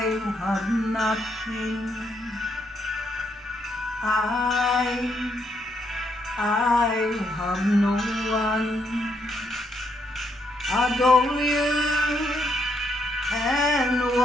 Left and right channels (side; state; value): both; normal; correlation 0.75